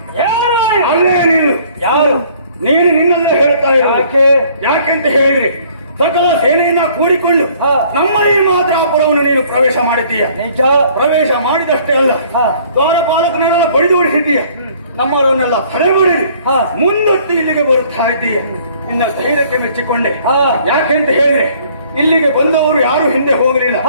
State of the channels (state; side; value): inverted; both; correlation -0.58